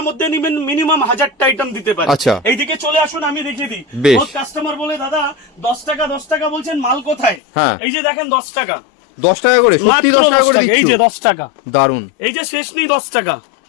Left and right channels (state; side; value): drops out; right; at 7.4 s